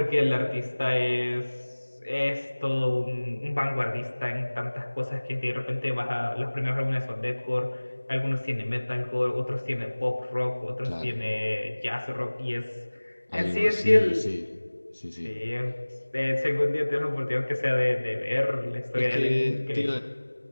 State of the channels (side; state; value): both; inverted; correlation -1.00